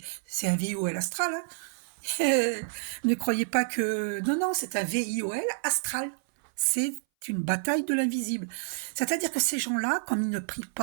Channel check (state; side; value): silent; left; 59 dB below the other